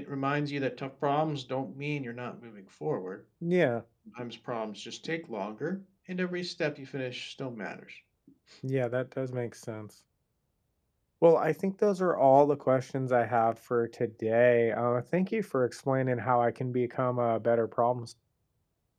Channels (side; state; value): both; identical; correlation 1.00